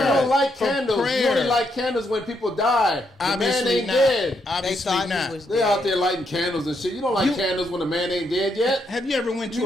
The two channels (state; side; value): normal; both; correlation 0.78